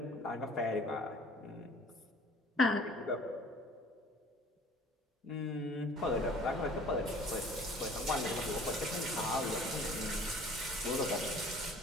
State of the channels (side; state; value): both; normal; correlation 0.50